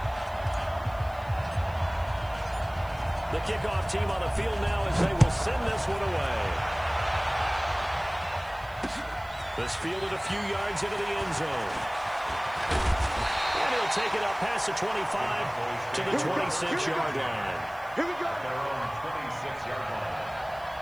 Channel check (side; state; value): right; noise; hiss, 26 dB below the sound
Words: The kickoff team on the field now as they will send this one away. This fielded a few yards into the end zone. And he'll take it up past the 25 to the 26-yard line. Here we go. Their own 26-yard line.